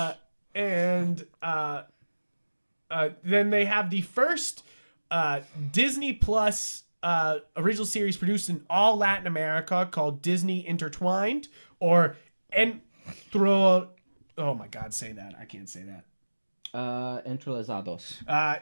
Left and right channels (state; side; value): inverted; both; correlation -1.00